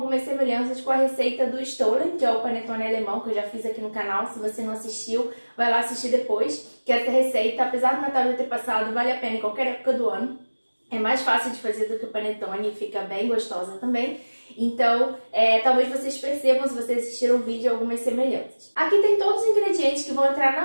semelhanças com a receita do stollen, que é o panetone alemão que eu já fiz aqui no canal. Se você não assistiu, vai lá assistir depois, que essa receita, apesar do Natal já ter passado, vale a pena em qualquer época do ano. É mais fácil de fazer do que o panetone e fica bem gostosa também. Então, talvez vocês percebam, se vocês assistiram o vídeo, algumas semelhanças. Aqui tem todos os ingredientes que vão entrar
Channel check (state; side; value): inverted; both; correlation -1.00